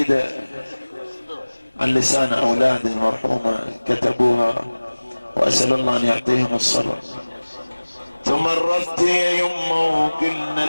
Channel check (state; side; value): inverted; both; correlation -1.00